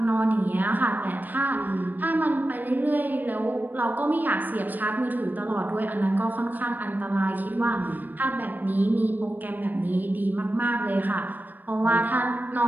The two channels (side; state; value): left; late; 0.087 ms